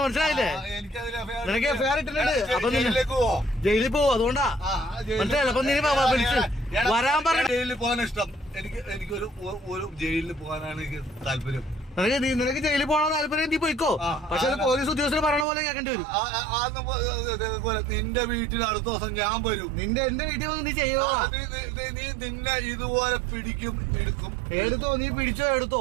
മനസ്സിലായില്ലേ, നിനക്ക് ഫെയർ ഇട്ടിട്ടുണ്ട്. അപ്പൊ ജയിലിൽ പോവും, അതുകൊണ്ടാ മനസ്സിലായില്ല. അപ്പൊ നീ വരാൻ പറഞ്ഞു. ജയിലിൽ പോകാൻ ഇഷ്ടം എനിക്കൊരു ജയിലിൽ പോകാനാണ് എനിക്ക് താല്പര്യം. നിനക്ക് ജയിലിൽ പോകണ താല്പര്യം, നീ പോയിക്കോ. പക്ഷെ പോലീസ് ഉദ്യോഗസ്ഥർ പറയണ പോലെ കേൾക്കേണ്ടി വരും. നിന്റെ വീട്ടിൽ അടുത്ത ദിവസം ഞാൻ വരും. എന്റെ വീട്ടിൽ വന്ന് നീ ചെയ്യുക. നീ നിന്നെ ഇതുപോലെ പിടിക്കും, എടുക്കും. എടുത്തോ, നീ പിടിച്ചോ, എടുത്തോ.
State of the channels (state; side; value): drops out; left; at 15.5 s